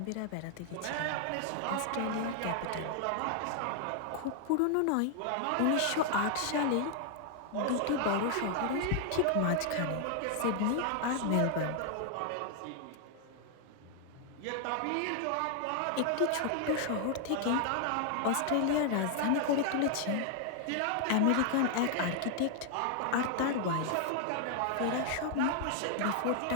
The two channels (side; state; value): both; different; correlation 0.00